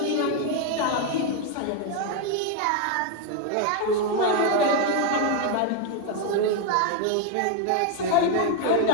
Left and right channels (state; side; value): different; both; correlation 0.01